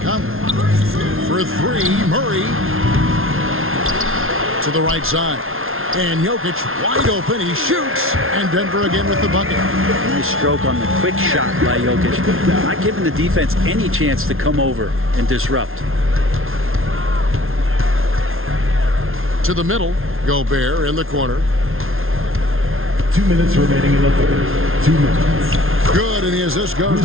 For three, Murray. To the right side. And Jokic wide open. He shoots. And Denver again with the bucket. Nice stroke on the quick shot by Jokic. Not giving the defense any chance to come over and disrupt. To the middle. Gobert in the corner. 2 minutes remaining in the third. 2 minutes. Good, and the assist goes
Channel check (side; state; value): left; late; 0.61 ms